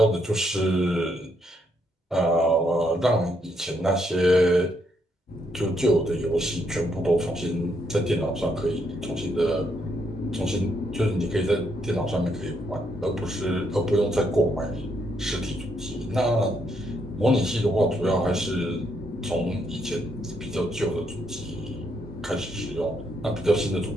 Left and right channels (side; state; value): both; normal; correlation 0.75